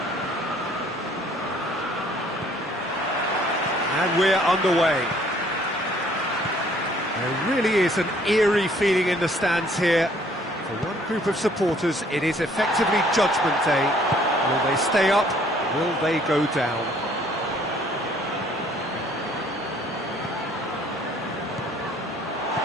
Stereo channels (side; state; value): both; normal; correlation 0.60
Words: And we're underway. There really is an eerie feeling in the stands here. For one group of supporters, it is effectively Judgment Day. Will they stay up? Will they go down?